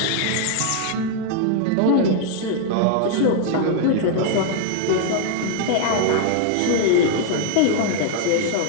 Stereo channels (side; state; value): both; different; correlation 0.00